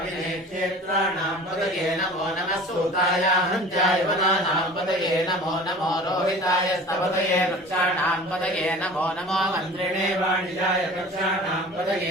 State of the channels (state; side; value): normal; both; correlation 0.42